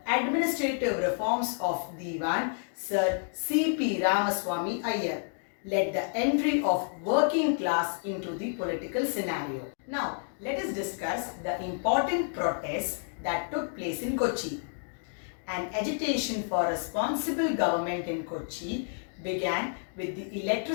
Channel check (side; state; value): right; silent; digital silence